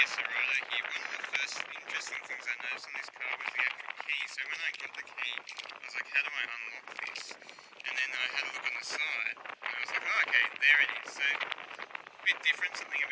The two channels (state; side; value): identical; both; correlation 1.00